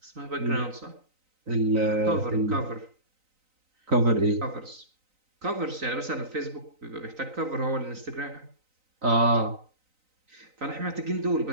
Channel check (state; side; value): late; left; 3.9 ms